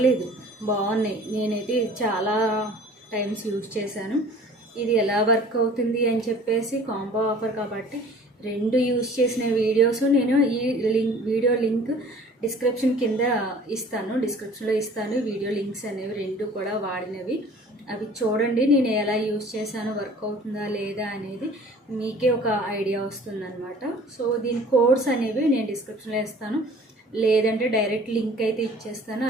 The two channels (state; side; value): normal; both; correlation 0.48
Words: బాగున్నాయి. నేనైతే చాలా టైమ్స్ యూజ్ చేశాను. ఇది ఎలా వర్క్ అవుతుంది అని చెప్పేసి కాంబో ఆఫర్ కాబట్టి 2 యూజ్ చేసిన వీడియోస్ నేను ఈ వీడియో లింక్ డిస్క్రిప్షన్లో ఇస్తాను. వీడియో లింక్స్ అనేవి 2 కూడా వాడినవి, అవి చూడండి. నేను ఎలా యూజ్ చేశాను, వర్క్ అవుతుందా లేదా అనేది మీకే ఒక ఐడియా వస్తుందన్నమాట. సో దీని కోడ్స్ అనేవి నేను డిస్క్రిప్షన్లో ఇస్తాను, లేదంటే డైరెక్ట్ లింక్ అయితే ఇచ్చేస్తాను.